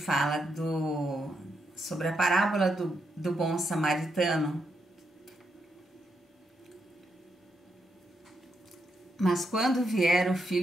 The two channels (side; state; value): both; normal; correlation 0.81